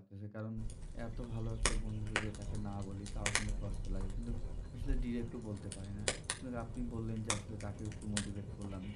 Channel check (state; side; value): identical; both; correlation 1.00